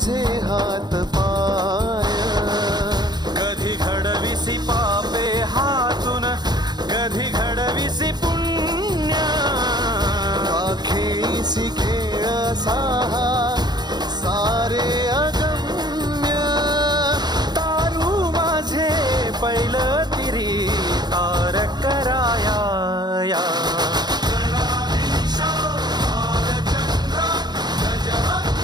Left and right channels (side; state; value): left; late; 0.20 ms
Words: हात पाय. कधी घडविसी पापे हातून, कधी घडविसी पुण्य, खेळीसी खेळ साहा सारे अगम्य. तारू माझे पैल तिरी तारक